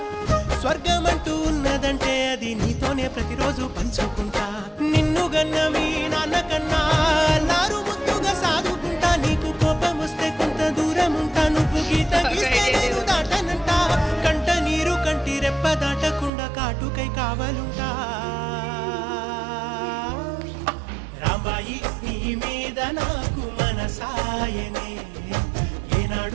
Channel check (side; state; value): left; drops out; at 16.3 s